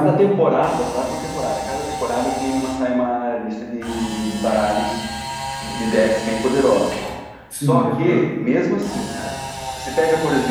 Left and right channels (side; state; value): both; identical; correlation 1.00